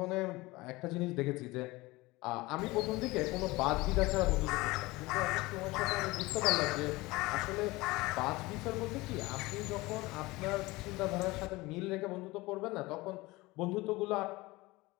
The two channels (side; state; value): right; quieter; 21.3 dB